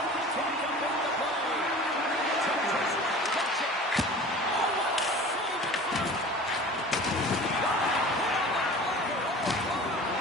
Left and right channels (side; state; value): both; normal; correlation 0.40